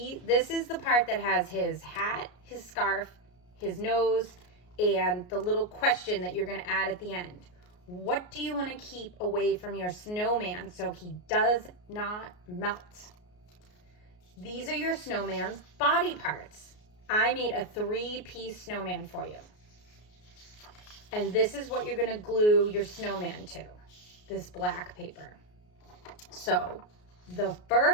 is the part that has his hat, his scarf, his nose, and the little question that you're going to add at the end. What do you want to keep away from your snowman so he does not melt? These are your snowman's body parts. I made a 3-piece snowman for you. And this is what you're going to glue your snowman to, this black paper. So the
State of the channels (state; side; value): late; right; 33 ms